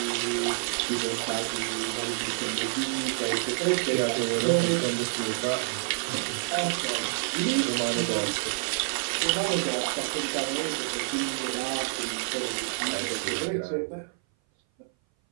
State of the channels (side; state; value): left; silent; 57 dB below the other